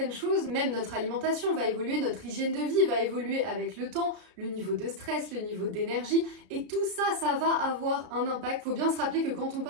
choses, même notre alimentation va évoluer, notre hygiène de vie va évoluer avec le temps, le niveau de stress, le niveau d'énergie, et tout ça, ça va avoir un impact. Faut bien se rappeler que quand on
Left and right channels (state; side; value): late; left; 33 ms